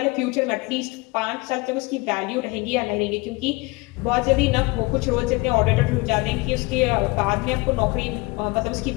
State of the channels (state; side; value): quieter; right; 24.5 dB